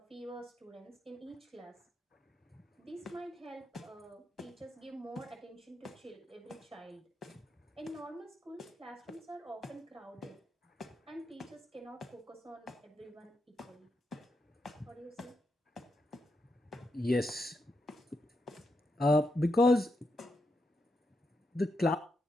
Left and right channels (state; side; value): normal; both; correlation 0.84